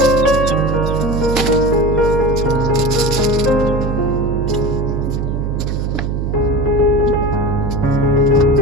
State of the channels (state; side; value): noise; right; hum, 1 dB below the sound